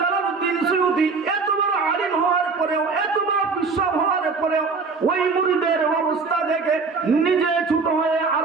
সুয়ুতী এত বড় আলিম হওয়ার পরেও, এত বড় বিশ্বব হওয়ার পরেও ওই মুরিদের অবস্থা দেখে নিজে ছোট হয়ে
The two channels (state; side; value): quieter; left; 4.6 dB